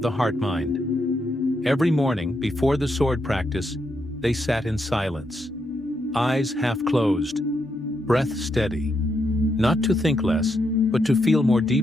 the heart-mind. Every morning, before the sword practice, they sat in silence, eyes half closed, breath steady. Not to think less, but to feel more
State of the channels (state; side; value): normal; both; correlation 0.81